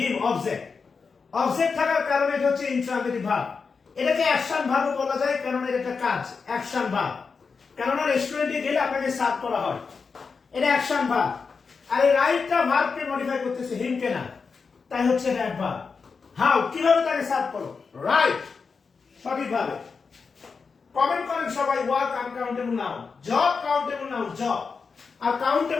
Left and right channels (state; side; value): quieter; right; 5.1 dB